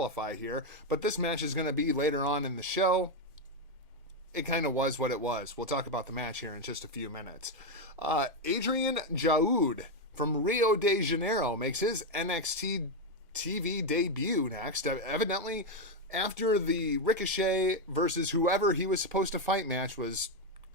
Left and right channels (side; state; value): both; normal; correlation 0.05